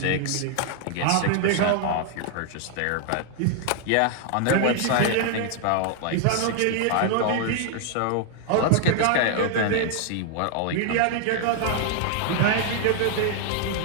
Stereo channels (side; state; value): both; different; correlation 0.00